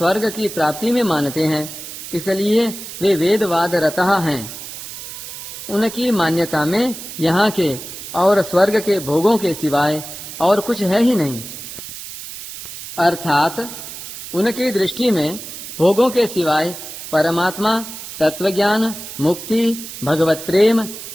की प्राप्ति में मानते हैं, इसलिए वे वेदवाद रतः हैं। उनकी मान्यता में यहाँ के और स्वर्ग के भोगों के सिवाय और कुछ है ही नहीं, अर्थात उनकी दृष्टि में भोगों के सिवाय परमात्मा, तत्वज्ञान, मुक्ति, भगवत प्रेम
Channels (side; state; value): right; noise; hiss, 11 dB below the sound